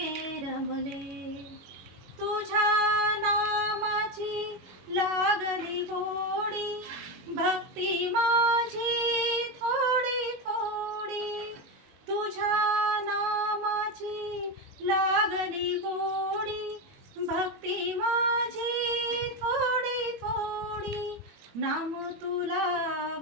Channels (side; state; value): left; late; 21 ms